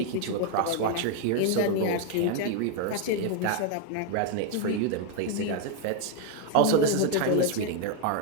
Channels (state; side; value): different; both; correlation 0.00